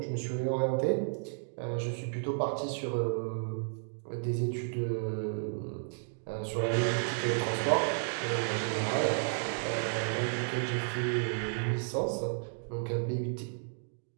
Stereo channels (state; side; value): silent; left; digital silence